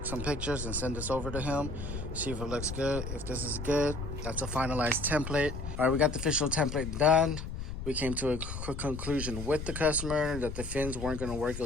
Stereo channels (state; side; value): noise; left; rumble, 7 dB below the sound